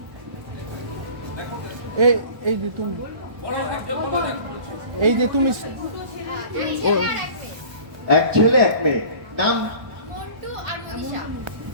এই এই যে তুমি এই যে তুমি ও এক ছেলে এক মেয়ে, নাম মন্টু আর মনীষা।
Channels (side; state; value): left; late; 1.2 ms